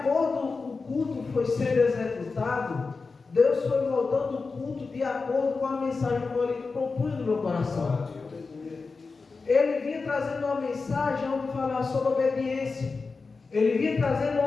com o culto foi sendo executado, Deus foi moldando o culto de acordo com a mensagem que ele propunha no meu coração. Ele vinha trazendo uma mensagem onde falava sobre obediência. Ele vinha trazendo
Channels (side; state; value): right; quieter; 4.3 dB